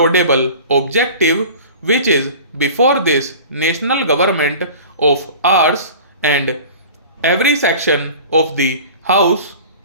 objective which is before this national government of ours and every section of the house.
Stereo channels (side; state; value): both; inverted; correlation -0.40